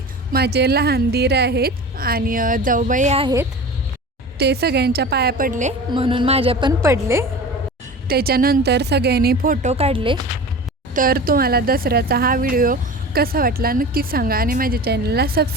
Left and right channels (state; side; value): normal; both; correlation 0.35